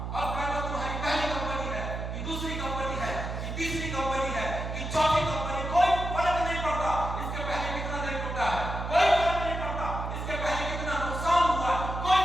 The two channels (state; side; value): noise; right; hum, 5 dB below the sound